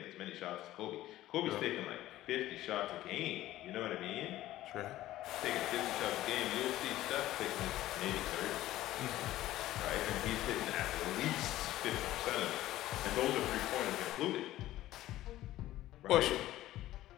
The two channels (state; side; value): quieter; right; 15.0 dB